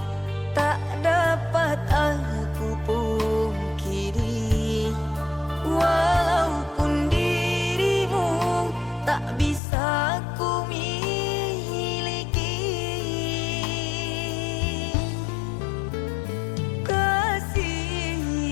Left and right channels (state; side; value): drops out; right; at 9.6 s